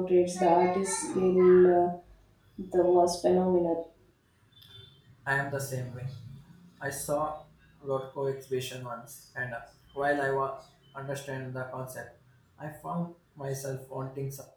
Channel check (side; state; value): both; identical; correlation 1.00